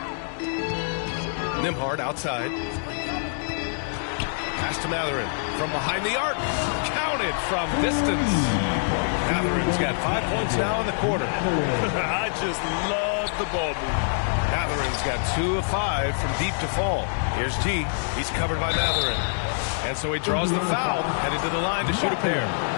Nembhard outside. Pass to Matherin from behind the arc. Counted from distance. Matherin's got 5 points now in the quarter. I just love the ball movement. Matherin's got 2 of 5 from deep to fall. Here's T. He's covered by Matherin. And so he draws the foul, headed to the line to shoot a pair.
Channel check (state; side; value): silent; right; 61 dB below the other